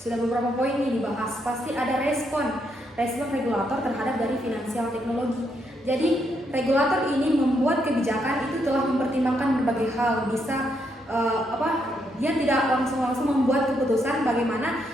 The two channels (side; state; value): both; normal; correlation 0.77